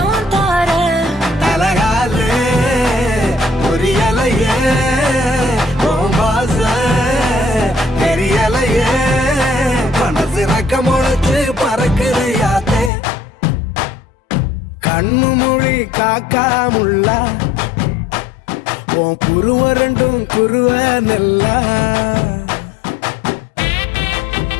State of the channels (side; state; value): right; drops out; at 12.9 s